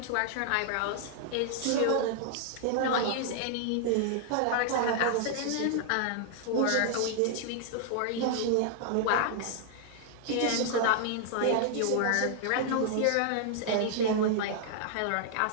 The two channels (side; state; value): both; different; correlation -0.01